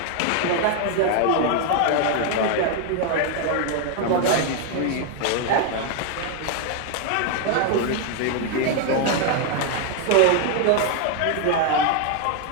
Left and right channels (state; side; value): different; both; correlation 0.00